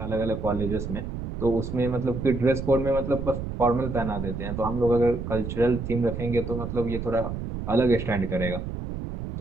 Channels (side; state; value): right; noise; rumble, 6 dB below the sound